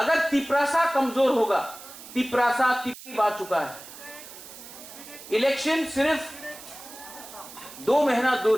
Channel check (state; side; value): noise; right; hiss, 16 dB below the sound